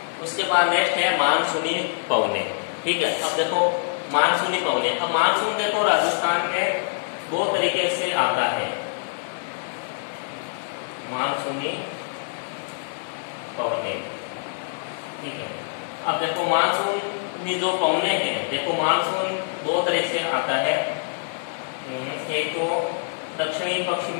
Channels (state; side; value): silent; right; digital silence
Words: उसके बाद नेक्स्ट है मानसूनी पवने, ठीक है। अब देखो मानसूनी पवने, अब मानसून देखो राजस्थान में दो तरीके से आता है, मानसूनी पवने, ठीक है। अब देखो मानसूनी जो पवने हैं, देखो मानसून दो तरह से आता है, एक तो दक्षिणी